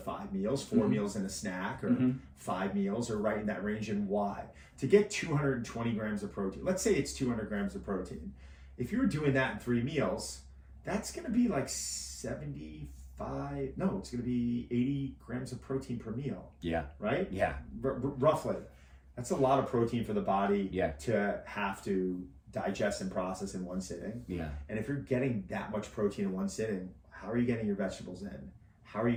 meals, 4 meals and a snack, or 5 meals, or right in that range. And why? To get 220 grams of protein. Let's say it's 200 grams of protein. If you were doing that in 3 meals, that's going to be like 75. No, it's going to be 80 grams of protein per meal. Yeah. Right? Yeah. Roughly. That's a lot of protein for the body to have to digest and process in one sitting. Yeah. And if you're getting that much protein in one sitting, how are you getting your vegetables in? How are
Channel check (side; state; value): both; identical; correlation 1.00